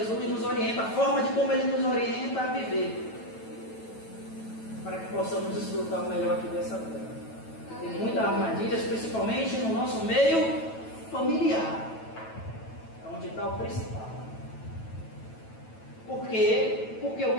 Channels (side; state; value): right; late; 9.1 ms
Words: nos orienta, a forma de como Ele nos orienta a viver, para que possamos desfrutar o melhor aqui dessa vida. Tem muitas armadilhas, principalmente no nosso meio familiar, é onde está o principal. Por quê? Porque o